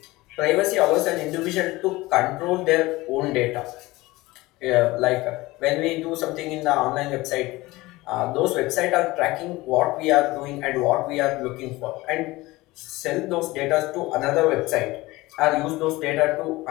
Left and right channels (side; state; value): right; quieter; 20.1 dB